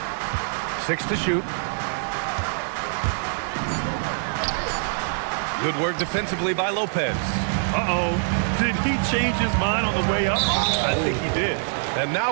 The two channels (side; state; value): left; silent; digital silence